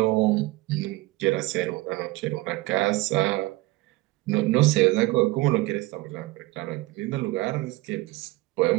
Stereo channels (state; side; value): quieter; left; 20.1 dB